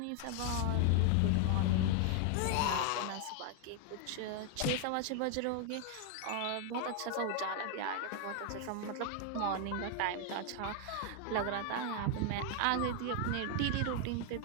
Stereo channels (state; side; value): different; both; correlation 0.00